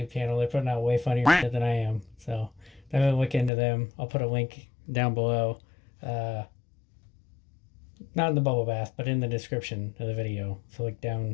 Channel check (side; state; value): right; drops out; at 3.5 s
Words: channel. They're putting out way funnier shit than I am. So definitely look into them. I'll put a link down below. Not in the bubble bath, but in the description of the video. So look